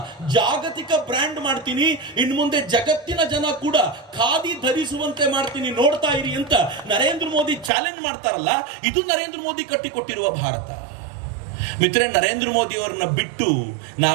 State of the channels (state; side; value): drops out; left; at 7.7 s